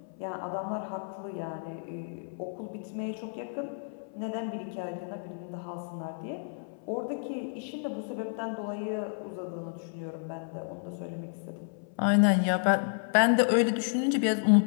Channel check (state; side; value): silent; right; 57 dB below the other